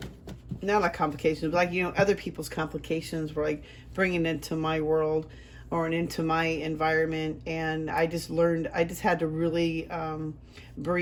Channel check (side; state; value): both; identical; correlation 1.00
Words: like complications, but like, other people's complications were like bringing into my world or into my environment. And I just had to really